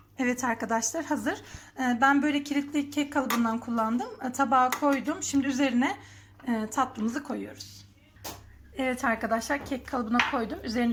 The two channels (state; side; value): identical; both; correlation 1.00